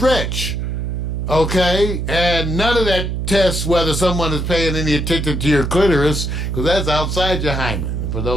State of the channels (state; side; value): noise; right; hum, 2 dB below the sound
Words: Okay? And none of that tests whether someone is paying any attention to your clitoris, because that's outside your hymen, for